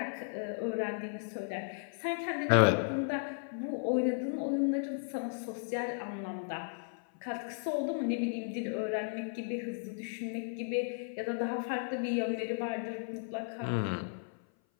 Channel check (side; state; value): right; silent; 54 dB below the other